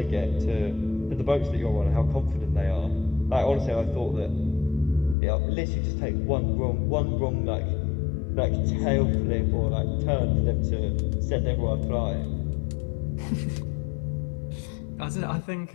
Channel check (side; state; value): right; drops out; at 5.2 s